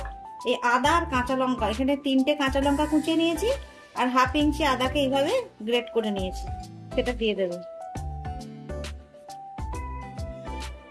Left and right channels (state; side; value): identical; both; correlation 1.00